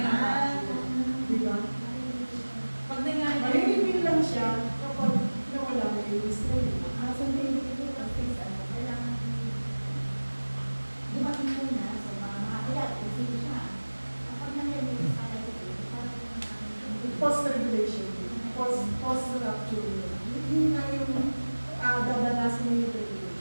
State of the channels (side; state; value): both; inverted; correlation -1.00